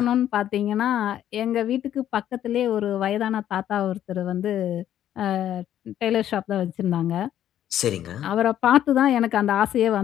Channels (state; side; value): quieter; right; 11.2 dB